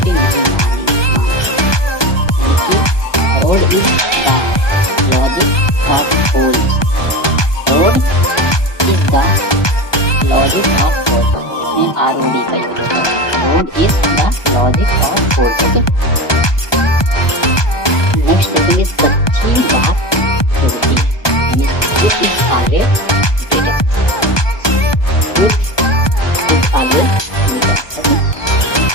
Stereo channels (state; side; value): late; right; 1.2 ms